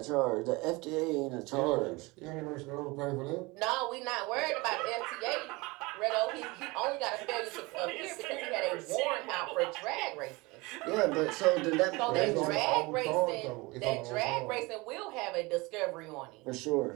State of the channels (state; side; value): quieter; left; 24.1 dB